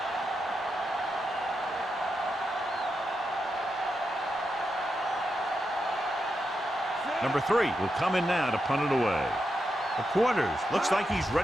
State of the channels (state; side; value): normal; both; correlation 0.86